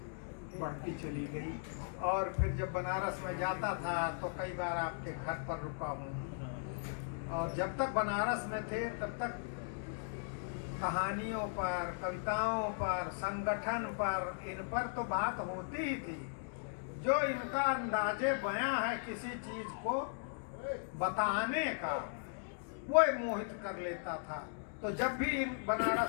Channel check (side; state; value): right; silent; digital silence